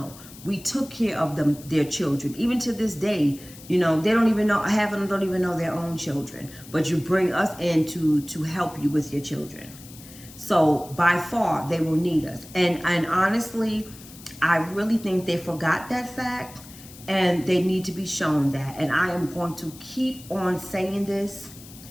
We took care of them, their children. Even to this day, you know, they don't even know, half of them don't even know their own children. But you bring us in to help you with your children. So by far, they will need us. And honestly, I really think they forgot that fact, and they need to be shown that. And I am going to keep on saying this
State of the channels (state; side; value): noise; left; hiss, 19 dB below the sound